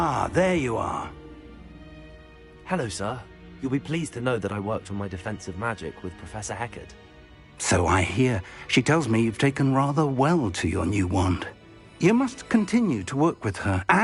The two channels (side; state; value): both; identical; correlation 1.00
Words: there you are. Hello, sir. You'll be pleased to know that I worked on my defensive magic with Professor Heckard. So I hear. She tells me you've taken rather well to your new wand. You must continue to work with her